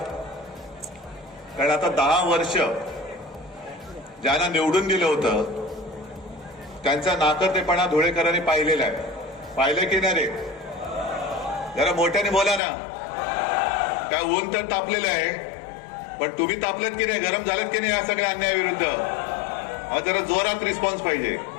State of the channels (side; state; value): right; drops out; at 12.6 s